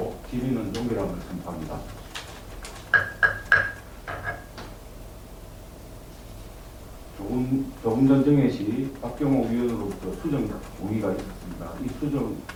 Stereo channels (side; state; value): both; identical; correlation 1.00